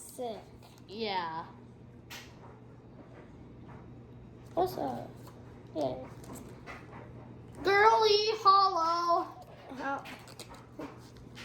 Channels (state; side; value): identical; both; correlation 1.00